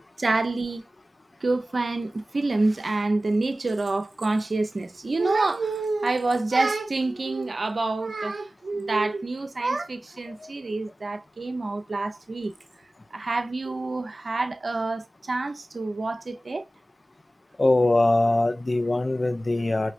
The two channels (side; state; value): both; normal; correlation 0.96